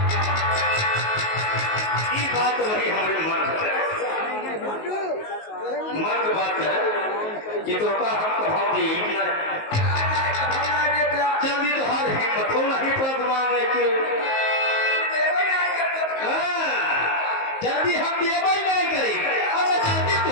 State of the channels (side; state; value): right; late; 19 ms